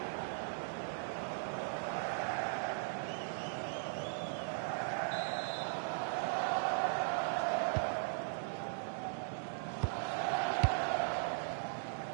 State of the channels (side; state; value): left; silent; digital silence